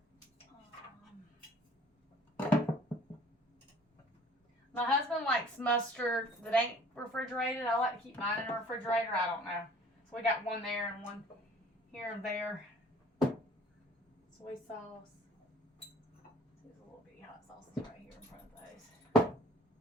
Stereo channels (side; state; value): both; normal; correlation 0.51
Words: My husband likes mustard that ain't refrigerated. I like to keep mine in the refrigerator. I don't know. So we got one there and one here and there. Soy sauce. There's a little bitty hot sauces right here in front of those.